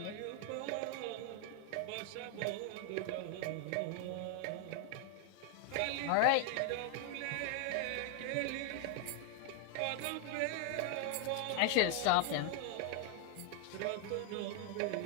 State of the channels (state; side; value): different; both; correlation 0.00